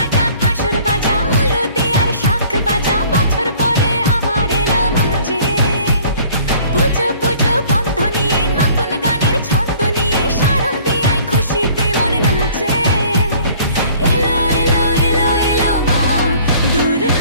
কাসর বাজা উলু দে আর শাখ বাজা, বছর পরে আবার এলো মাঝে। পুজো পুজো গন্ধ নিয়ে নতুন গানের ছন্দ নিয়ে শারদিয়ায় খুশিতে মন নাচে। এলো এলো এলো এলো মা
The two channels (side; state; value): both; inverted; correlation -0.53